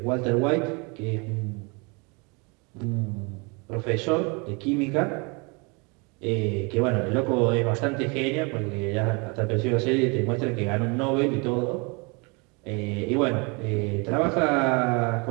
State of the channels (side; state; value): left; quieter; 30.4 dB